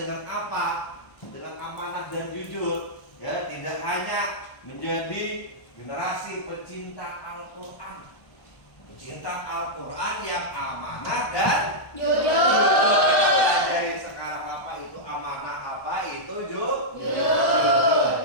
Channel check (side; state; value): right; late; 1.1 ms